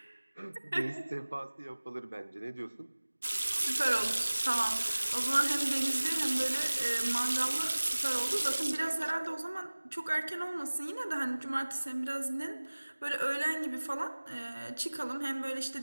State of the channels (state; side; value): inverted; both; correlation -1.00